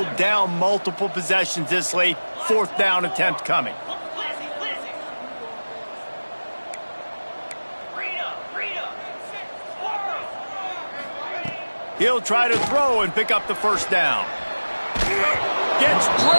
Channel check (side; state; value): both; inverted; correlation -1.00